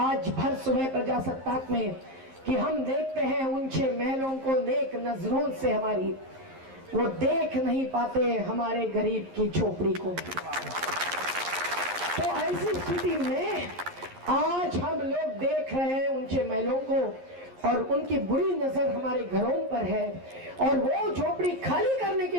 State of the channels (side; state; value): left; late; 11 ms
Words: भर सुबह प्रजासत्ताक में कि हम देखते हैं ऊंचे महलों को नेक नजरों से, हमारी वो देख नहीं पाते हमारे गरीब की झोपड़ी को। तो ऐसी स्थिति में आज हम लोग देख रहे हैं ऊंचे महलों को, और उनकी बुरी नजर हमारे घरों पर है, और वो झोपड़ी खाली करने की